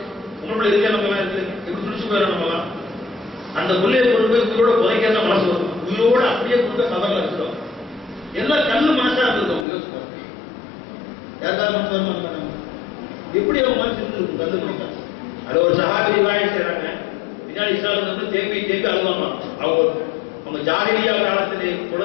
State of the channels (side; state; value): right; drops out; at 9.7 s